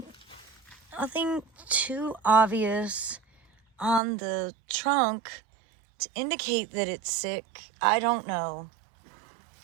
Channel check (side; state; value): left; drops out; at 4.0 s